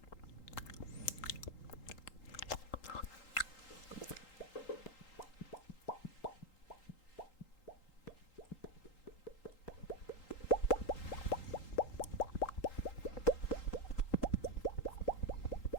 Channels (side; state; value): right; late; 3.8 ms